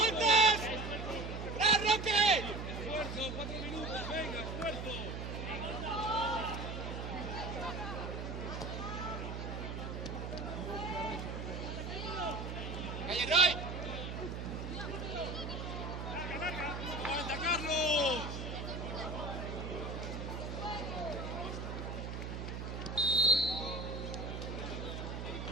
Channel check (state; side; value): noise; right; hum, 5 dB below the sound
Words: ¡Ra, Roque! Esfuerzo, 4 minutos, venga, esfuerzo. ¡Calle Roy! ¡Aguanta, Carlos!